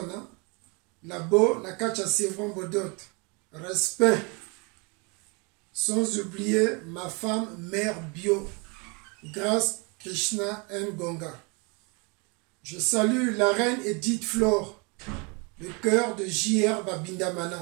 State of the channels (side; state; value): left; quieter; 31.2 dB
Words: hein? Labo na kacha Sévron Bodot. Respect. Sans oublier ma femme mère bio. Grâce Krishna Ngonga. Je salue la reine Edith Flore, le cœur de J.R.